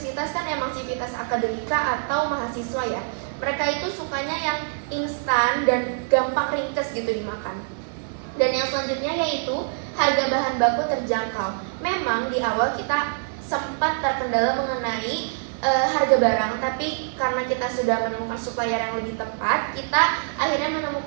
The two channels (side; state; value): left; silent; 61 dB below the other